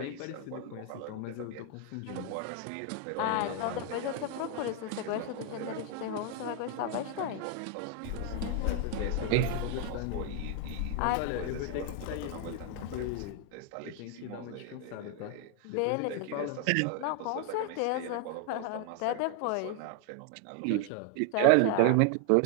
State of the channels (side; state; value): both; different; correlation 0.00